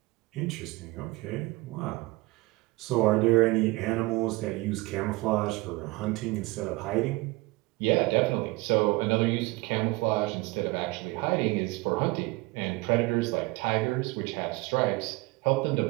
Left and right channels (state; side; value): quieter; left; 22.8 dB